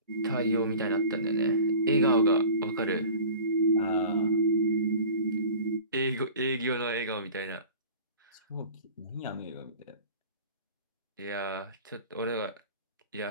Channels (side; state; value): both; inverted; correlation -0.41